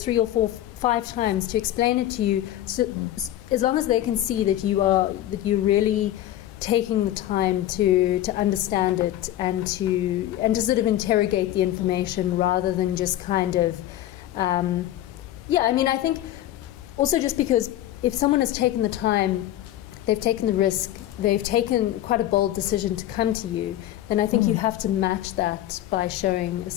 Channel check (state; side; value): quieter; right; 13.3 dB